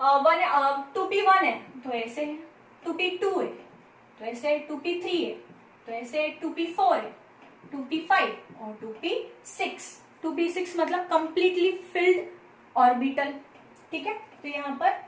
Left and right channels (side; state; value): both; identical; correlation 1.00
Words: 2p1 है तो ऐसे है, 2p2 है तो ऐसे, 2p3 है तो ऐसे, 2p4 है, 2p5 और 2p6। 2p6 मतलब कंप्लीटली फिल्ड ऑर्बिटल, ठीक है। तो यहाँ